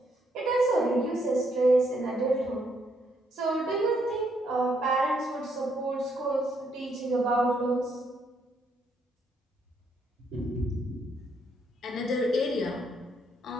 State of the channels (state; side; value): normal; both; correlation 0.73